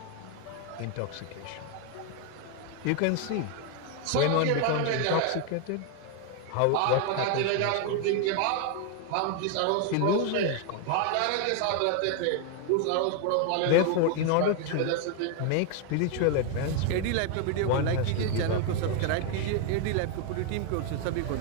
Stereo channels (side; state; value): both; different; correlation 0.01